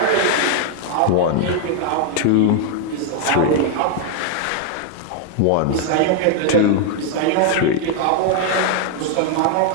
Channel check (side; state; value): both; different; correlation 0.00